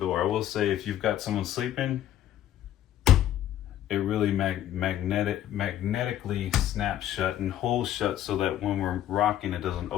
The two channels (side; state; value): right; quieter; 12.0 dB